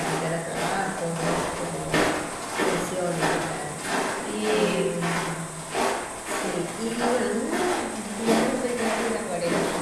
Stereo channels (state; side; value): identical; both; correlation 1.00